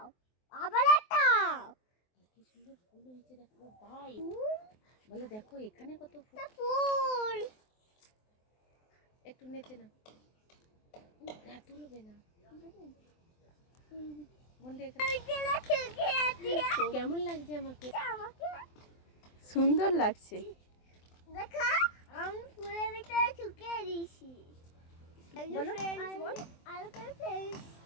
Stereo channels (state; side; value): late; right; 23 ms